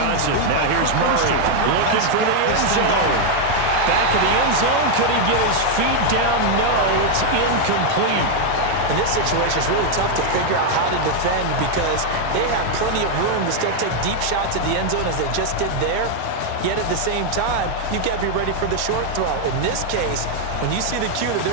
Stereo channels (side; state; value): both; different; correlation 0.01